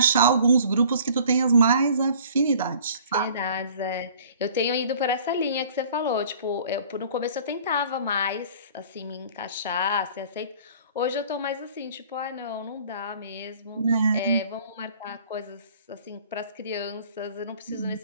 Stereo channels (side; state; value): both; inverted; correlation -0.50